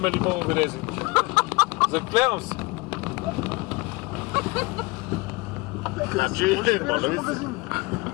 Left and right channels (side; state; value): right; quieter; 24.8 dB